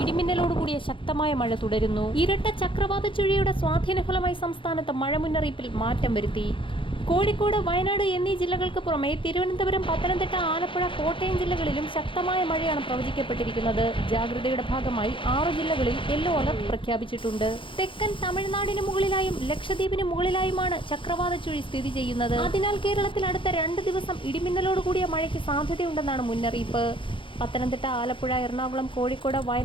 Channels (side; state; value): right; late; 0.25 ms